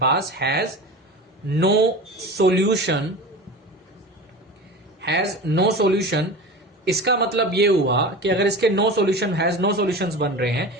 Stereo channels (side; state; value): both; normal; correlation 0.32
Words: पास has no solution has no solution, इसका मतलब ये हुआ कि अगर इसके no solution has no solutions बन रहे हैं,